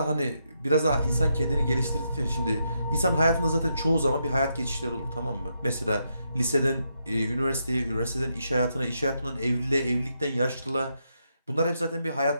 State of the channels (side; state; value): both; inverted; correlation -0.81